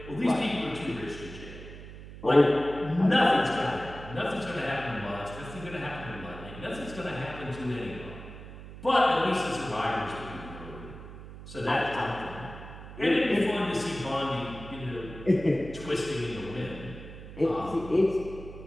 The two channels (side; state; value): right; noise; hum, 14 dB below the sound